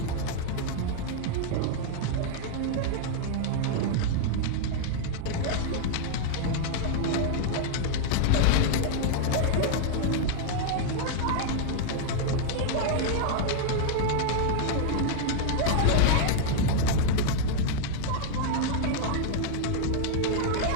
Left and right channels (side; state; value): both; different; correlation -0.01